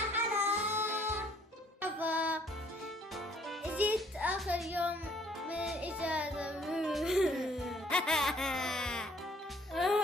حلا. جيت آخر يوم من الإجازة.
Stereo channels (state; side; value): normal; both; correlation 0.61